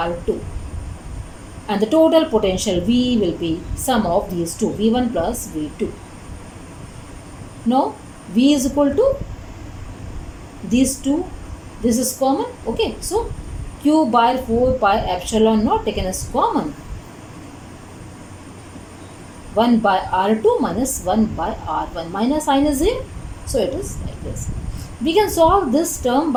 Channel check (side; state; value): both; identical; correlation 1.00